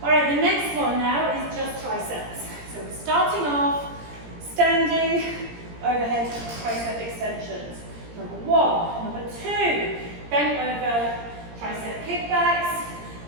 All right, the next one now is just triceps. So we're starting off standing overhead tricep extensions. Number 1. Number 2, bent over tricep kickbacks.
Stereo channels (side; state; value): left; late; 17 ms